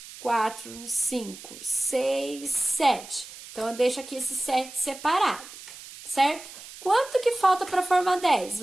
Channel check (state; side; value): noise; right; hiss, 16 dB below the sound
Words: 4, 5, 6, 7. Então, eu deixo aqui esse 7 separado, certo? Quanto que falta para formar 10?